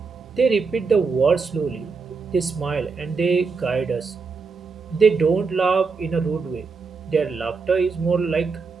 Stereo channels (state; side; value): quieter; left; 4.8 dB